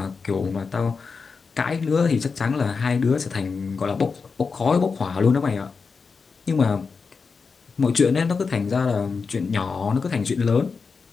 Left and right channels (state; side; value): quieter; right; 5.0 dB